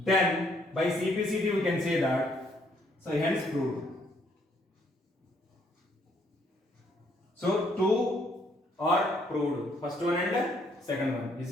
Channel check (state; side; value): normal; both; correlation 0.68